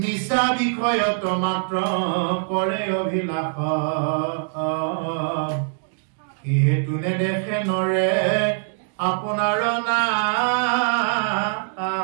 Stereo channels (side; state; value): left; silent; digital silence